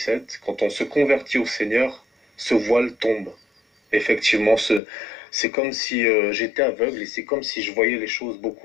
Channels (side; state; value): right; drops out; at 4.8 s